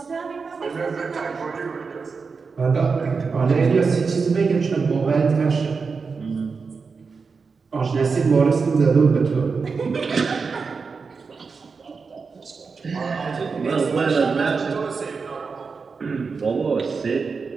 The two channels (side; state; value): left; quieter; 5.0 dB